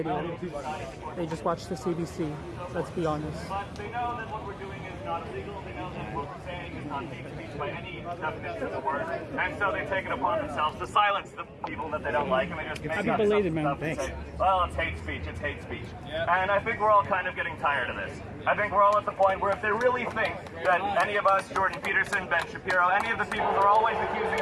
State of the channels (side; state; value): both; identical; correlation 1.00